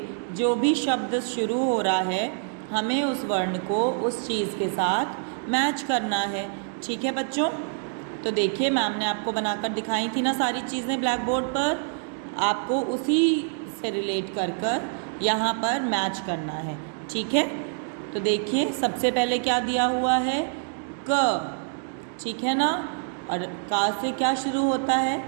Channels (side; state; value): left; silent; digital silence